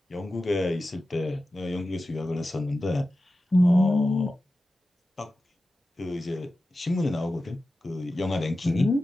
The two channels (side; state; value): both; normal; correlation 0.94